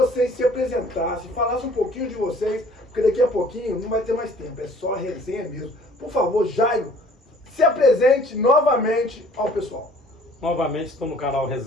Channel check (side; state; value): both; normal; correlation 0.54